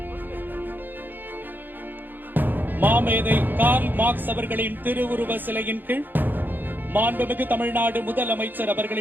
மாமேதை கார்ல் மார்க்ஸ் அவர்களின் திருவுருவ சிலையின் கீழ் மாண்புமிகு தமிழ்நாடு முதலமைச்சர்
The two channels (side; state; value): left; late; 0.090 ms